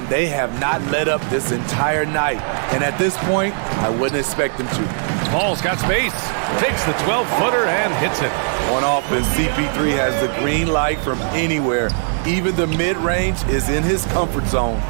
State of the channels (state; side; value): silent; left; 62 dB below the other